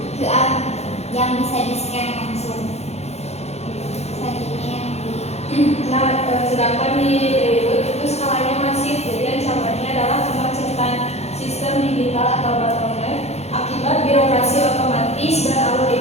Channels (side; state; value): right; late; 0.31 ms